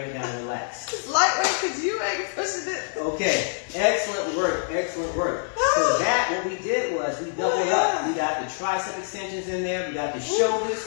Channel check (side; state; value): right; silent; 59 dB below the other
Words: it down and relax. It's lightweight because you ain't pushing it. Okay. Excellent work. Excellent work. So that, what we did was we doubled up. We got the tricep extensions in there. We got the shoulders.